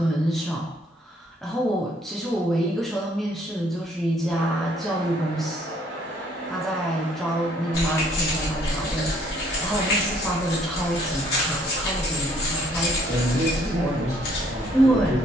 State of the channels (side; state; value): both; normal; correlation 0.63